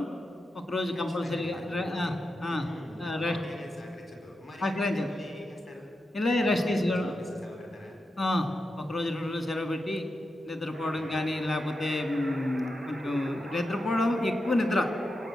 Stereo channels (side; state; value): both; normal; correlation 0.88